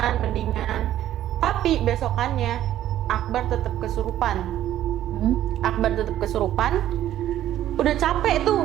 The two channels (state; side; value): quieter; left; 12.4 dB